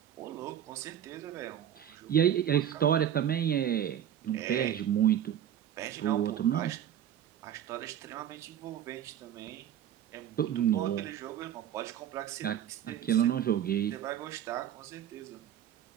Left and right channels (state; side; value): quieter; left; 10.4 dB